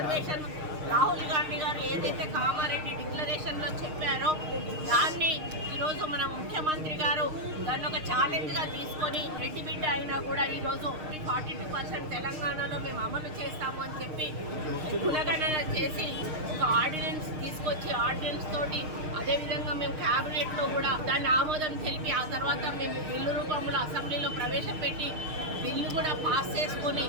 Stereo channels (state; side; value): late; left; 6.5 ms